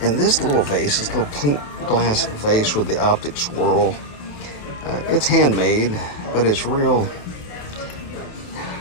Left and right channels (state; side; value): late; right; 28 ms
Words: And this little vase, this little pink glass vase with the optic swirl, it's handmade, but it's real,